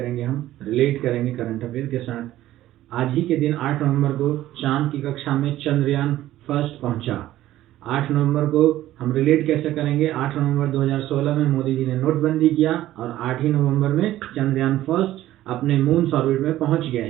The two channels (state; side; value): quieter; left; 14.3 dB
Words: हम रिलेट करेंगे करंट अफेयर के साथ। आज ही के दिन 8 नवंबर को चांद की कक्षा में चंद्रयान फर्स्ट पहुंचा। 8 नवंबर को हम रिलेट कैसे करेंगे? 8 नवंबर 2016 में मोदी जी ने नोटबंदी किया और 8 ही नवंबर में चंद्रयान फर्स्ट अपने मून ऑर्बिट में पहुंच गया।